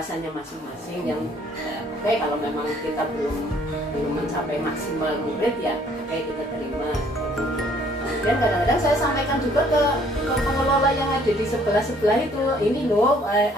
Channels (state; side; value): normal; both; correlation 0.61